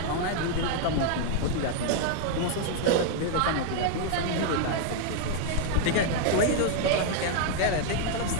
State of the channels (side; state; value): both; different; correlation 0.00